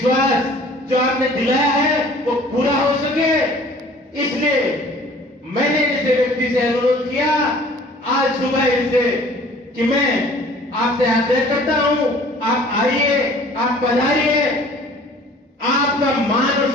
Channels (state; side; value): normal; both; correlation 0.50